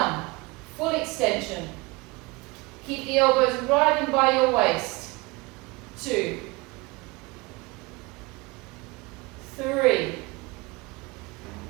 Full extension. Keep the elbows right in by your waist. 2, 3,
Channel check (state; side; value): quieter; left; 24.4 dB